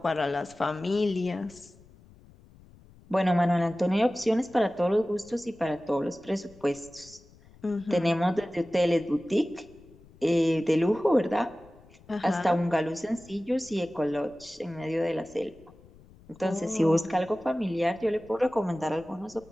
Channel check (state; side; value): noise; left; rumble, 25 dB below the sound